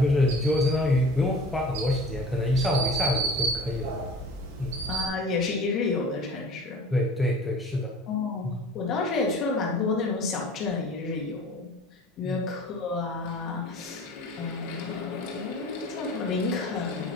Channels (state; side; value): normal; both; correlation 0.42